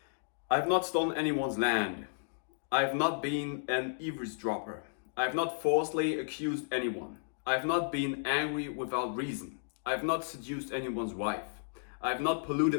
I have not stolen anyone's land. I have not been an eavesdropper. I have not falsely accused anyone. I have not been angry without reason. I have not seduced anyone's wife. I have not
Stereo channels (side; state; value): right; silent; digital silence